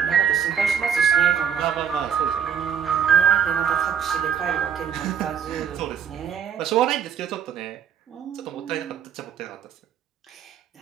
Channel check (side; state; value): left; quieter; 7.9 dB